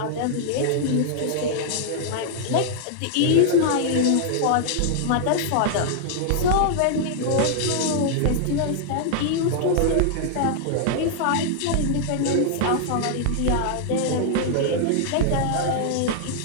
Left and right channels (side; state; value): both; different; correlation -0.01